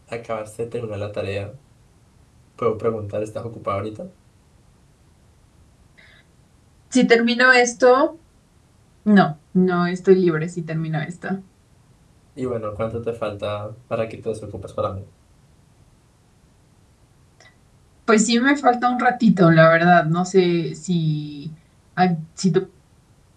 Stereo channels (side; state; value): both; identical; correlation 1.00